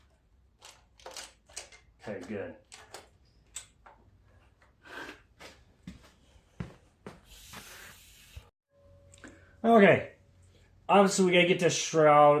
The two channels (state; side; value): identical; both; correlation 1.00